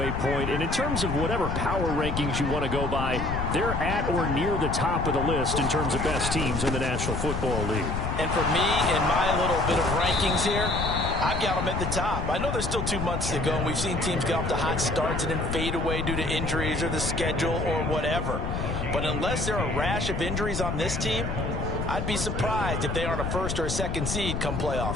point. And in terms of whatever power rankings you want to go by, they're at or near the top of the list in terms of best teams in the National Football League. And for me, in my little bit of rankings here, I've got them at the top. I know there's still 2 months to go, and we've seen teams get off to hot starts and then fade away due to injuries or the schedule or whatever. But unless there are a rash of injuries on this team, I'd be surprised if they aren't a 1st or a 2nd seed come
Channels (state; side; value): noise; left; rumble, 2 dB below the sound